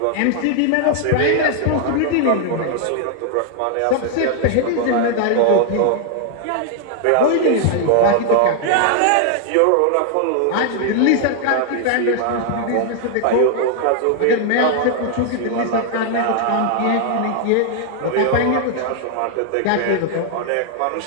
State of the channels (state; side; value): different; both; correlation 0.00